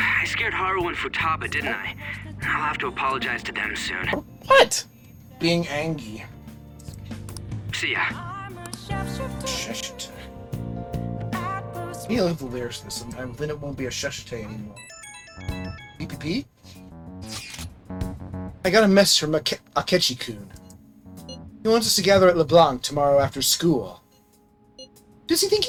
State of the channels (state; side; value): identical; both; correlation 1.00